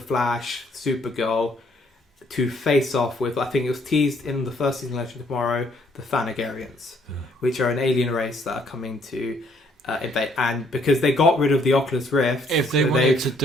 Supergirl to face off with, I think it was teased in the first season of Legends Tomorrow, the Thanagarians, which are an alien race that are coming to invade. And because they got rid of the Oculus Rift, if they wanted to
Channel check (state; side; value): normal; both; correlation 0.66